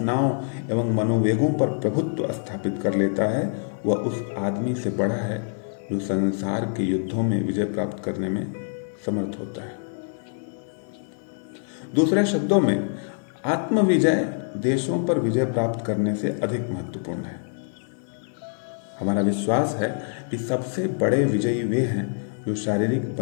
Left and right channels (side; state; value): right; silent; 55 dB below the other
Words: एवं मनोवेगों पर प्रभुत्व स्थापित कर लेता है, वह उस आदमी से बड़ा है जो संसार के युद्धों में विजय प्राप्त करने में समर्थ होता है। दूसरे शब्दों में, आत्मविजय देशों पर विजय प्राप्त करने से अधिक महत्वपूर्ण है। हमारा विश्वास है कि सबसे बड़े विजयी वे हैं जो शारीरिक